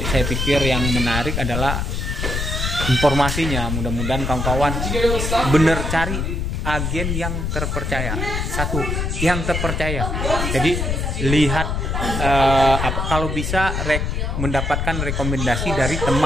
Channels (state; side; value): noise; left; rumble, 1 dB below the sound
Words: saya pikir yang menarik adalah informasinya. Mudah-mudahan kawan-kawan bener cari agen yang terpercaya. Satu, yang terpercaya. Jadi lihat kalau bisa mendapatkan rekomendasi dari